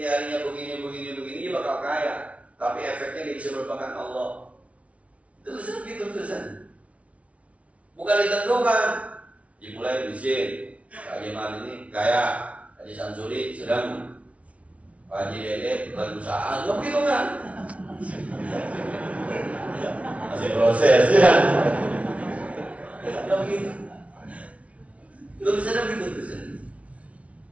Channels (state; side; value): late; left; 0.064 ms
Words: begini, dia bakal kaya. Tapi efeknya dia bisa merupakan Allah. Tulisan gitu tulisan. Bukan ditentukan. Dimulai miskin. Pak Haji Mal ini kaya. Haji Samsuri sedang. Pak Haji Dede lagi usaha. Nggak begitu kan? Masih proses ya. Nggak begitu. Tulisannya begitu tulisan.